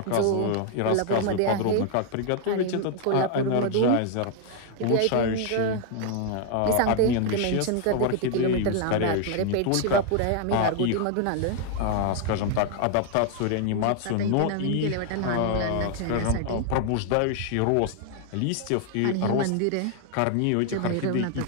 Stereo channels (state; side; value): different; both; correlation 0.00